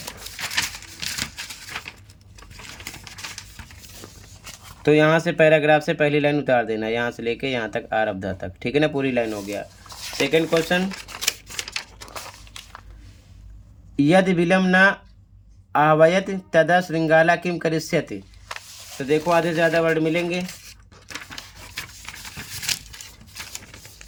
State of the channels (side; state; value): both; identical; correlation 1.00